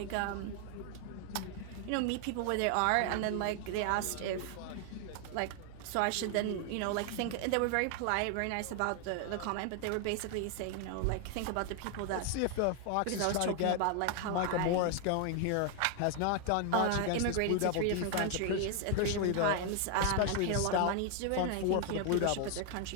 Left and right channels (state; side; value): different; both; correlation 0.00